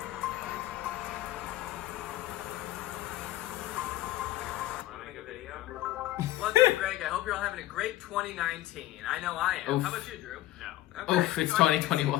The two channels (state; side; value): quieter; right; 15.1 dB